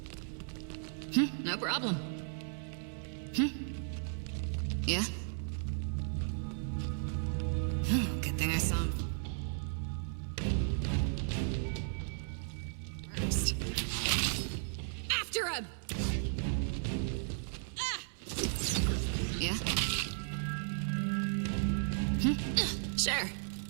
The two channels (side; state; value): left; silent; 54 dB below the other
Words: No problem. Yeah? Good thing I saw him first. After him! Yeah? Sure.